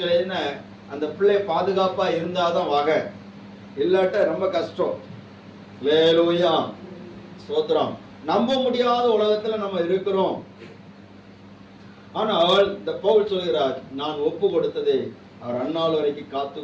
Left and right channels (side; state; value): both; identical; correlation 1.00